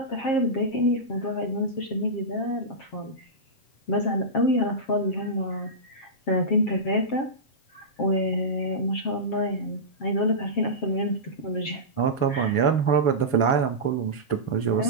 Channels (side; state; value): right; late; 7.4 ms